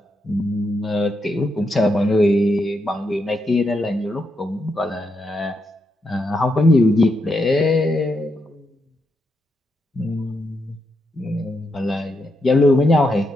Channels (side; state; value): both; normal; correlation 0.82